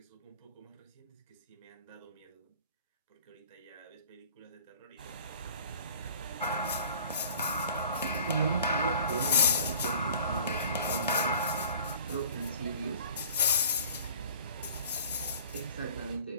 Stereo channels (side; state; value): both; inverted; correlation -0.47